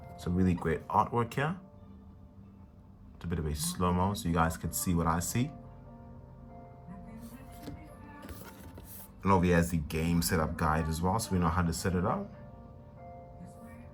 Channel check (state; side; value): identical; both; correlation 1.00